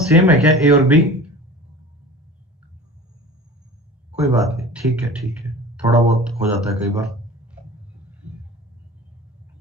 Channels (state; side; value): normal; both; correlation 0.38